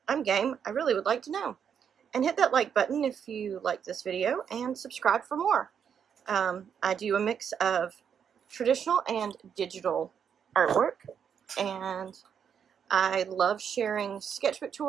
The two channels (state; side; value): quieter; left; 7.7 dB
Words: I'm game. I really would like to know. And hit that like button if you like this video, and subscribe for more. I do a mix of traditional and digital artwork, and I love sharing sketchbook